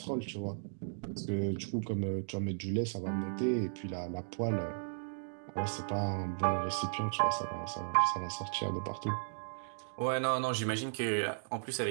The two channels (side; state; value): left; silent; digital silence